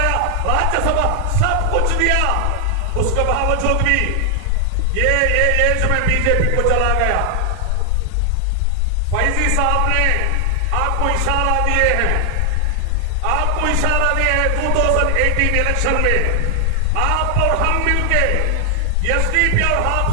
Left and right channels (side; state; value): both; different; correlation 0.00